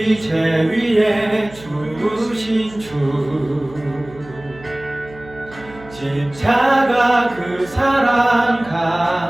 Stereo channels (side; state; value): right; noise; hum, 20 dB below the sound